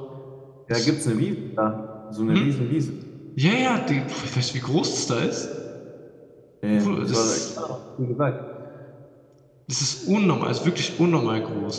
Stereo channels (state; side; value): identical; both; correlation 1.00